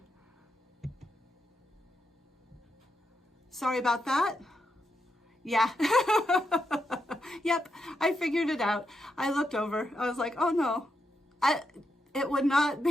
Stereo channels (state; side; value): normal; both; correlation 0.83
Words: Sorry about that. Yeah. Yep, I figured it out. I looked over. I was like, oh no. It would not